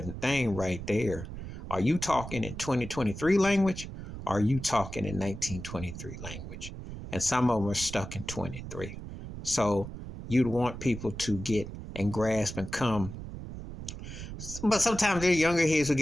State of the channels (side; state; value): right; noise; rumble, 10 dB below the sound